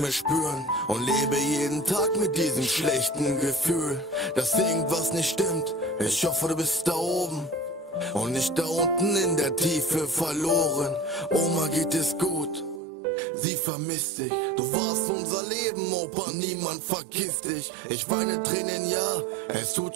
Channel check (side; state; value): left; drops out; at 12.8 s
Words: spüren und lebe jeden Tag mit diesem schlechten Gefühl, dass irgendwas nicht stimmt. Ich hoffe, du bist da oben und nicht da unten in der Tiefe verloren. Oma geht es gut, sie vermisst dich. Du warst unser Leben, Opa, niemand vergisst dich. Ich weine Tränen, ja, es tut